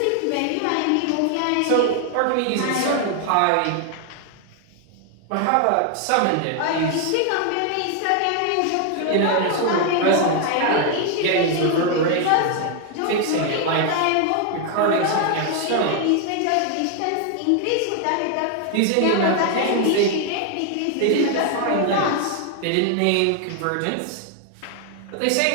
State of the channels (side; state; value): both; different; correlation 0.00